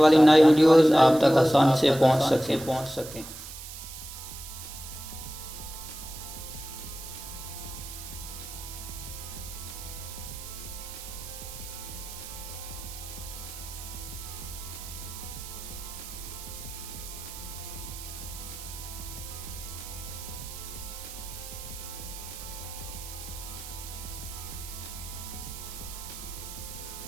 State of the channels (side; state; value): right; noise; hiss, 11 dB below the sound